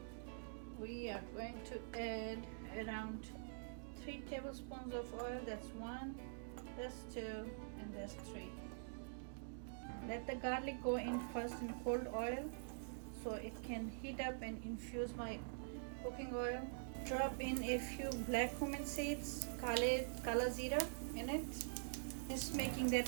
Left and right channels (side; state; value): left; silent; digital silence